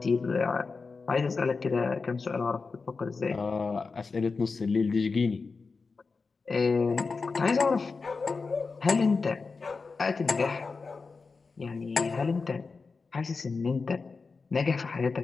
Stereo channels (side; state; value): right; quieter; 4.5 dB